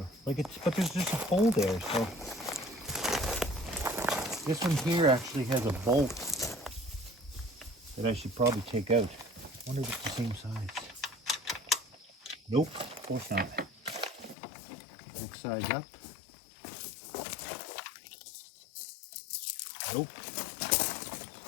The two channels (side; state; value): right; drops out; at 14.4 s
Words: But there's just a hole there. So this one here actually has a bolt that I should probably take out. I wonder if it's the same size. Nope, of course not. Next size up. Nope.